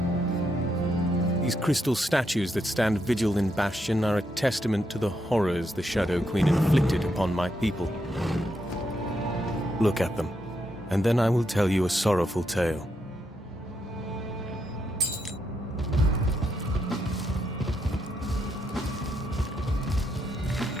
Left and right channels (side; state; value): both; normal; correlation 0.80